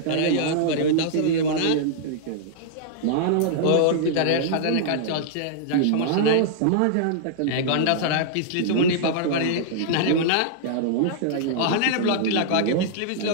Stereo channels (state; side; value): different; both; correlation -0.01